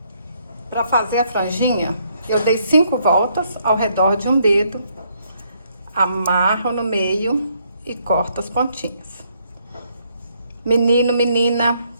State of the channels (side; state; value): both; inverted; correlation -0.71